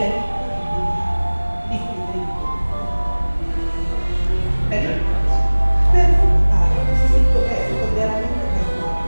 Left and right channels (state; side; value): inverted; both; correlation -1.00